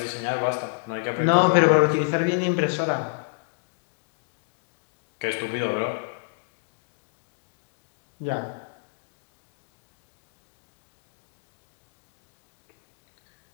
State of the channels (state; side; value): silent; right; digital silence